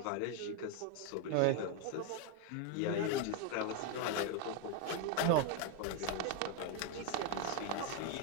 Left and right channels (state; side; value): different; both; correlation 0.01